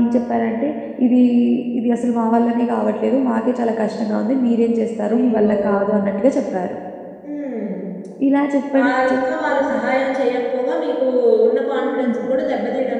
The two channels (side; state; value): both; identical; correlation 1.00